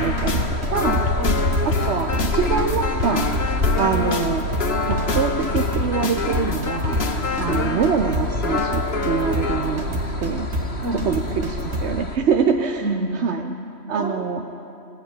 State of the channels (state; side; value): late; left; 3.0 ms